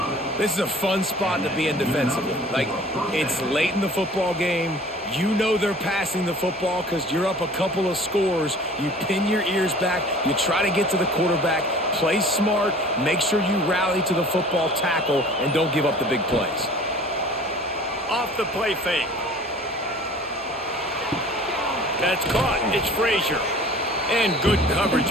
This is a fun spot to be in defensively. Like, it's late in the football game. You know they're passing the football because you're up a couple of scores. You pin your ears back. You try to get to the quarterback. Play smart. Make sure you rally to the football tackle and don't give up the big plays. Off the play fake. That's caught. It's Frazier. And good coverage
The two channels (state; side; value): normal; both; correlation 0.47